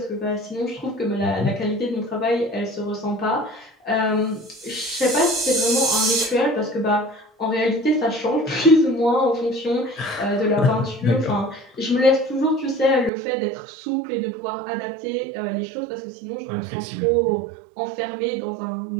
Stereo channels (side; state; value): left; drops out; at 13.1 s